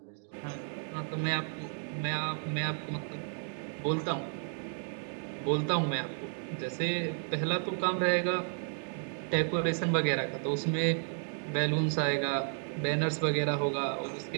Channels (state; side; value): silent; left; 56 dB below the other